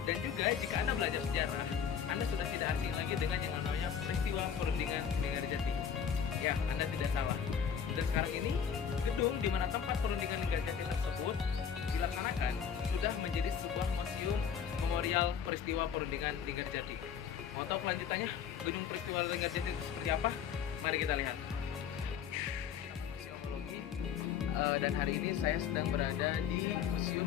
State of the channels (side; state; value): right; quieter; 7.8 dB